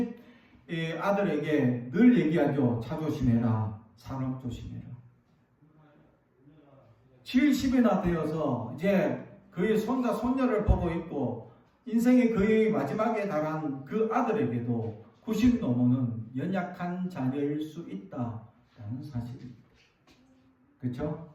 아들에게 늘 얘기하죠. 차 조심해라. 사람 조심해라. 70이나 되어서 이제 그의 손자 손녀를 보고 있고 인생의 거의 마지막에 달한 그 아들에게도 90 노모는 연약한 자녀일 수 있다라는 사실입니다. 그렇죠?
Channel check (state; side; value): identical; both; correlation 1.00